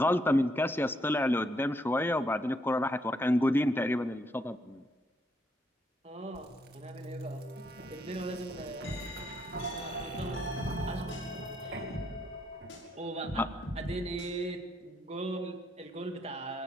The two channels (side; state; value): both; normal; correlation 0.75